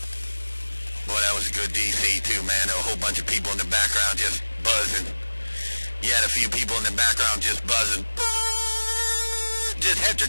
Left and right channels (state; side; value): inverted; both; correlation -1.00